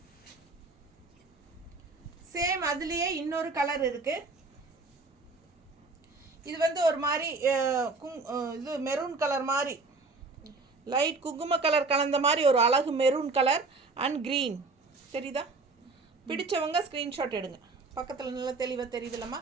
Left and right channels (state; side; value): quieter; left; 3.8 dB